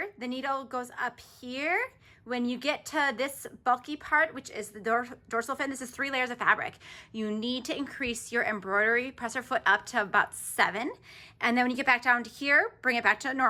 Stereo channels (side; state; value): both; identical; correlation 1.00